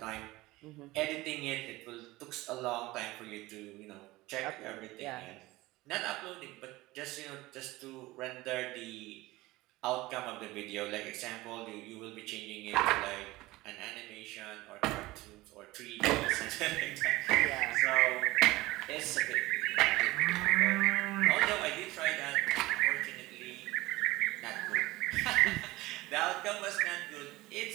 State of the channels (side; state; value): left; quieter; 19.5 dB